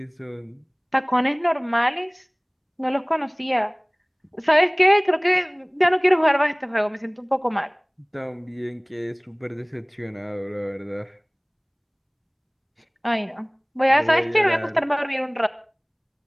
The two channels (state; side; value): identical; both; correlation 1.00